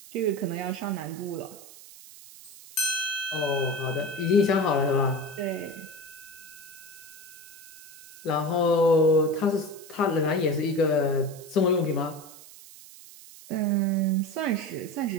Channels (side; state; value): right; noise; hiss, 19 dB below the sound